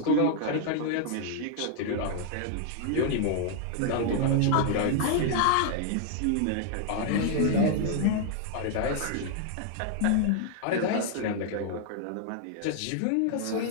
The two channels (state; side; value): different; both; correlation 0.00